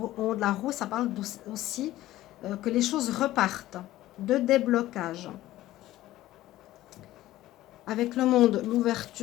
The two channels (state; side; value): quieter; right; 15.3 dB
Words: haut de la roue. Ça parle aussi que les choses repartent, de déblocage. Avec le monde,